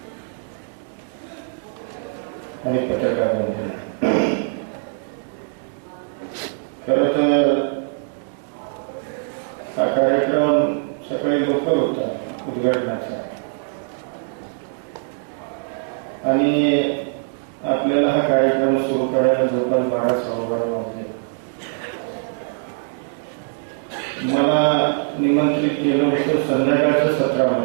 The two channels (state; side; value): silent; left; digital silence